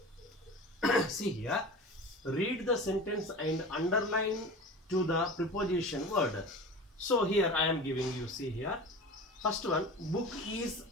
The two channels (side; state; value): both; normal; correlation 0.34